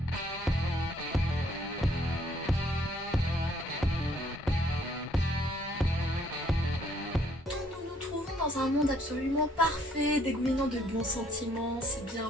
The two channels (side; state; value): both; normal; correlation 0.65